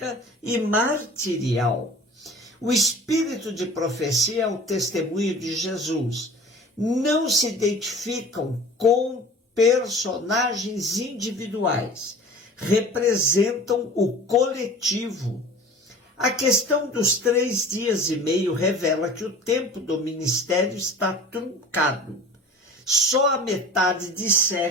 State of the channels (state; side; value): normal; both; correlation 0.42